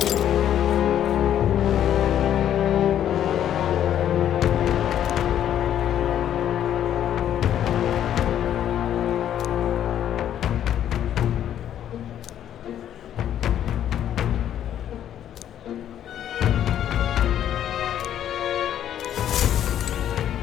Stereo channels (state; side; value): quieter; right; 10.6 dB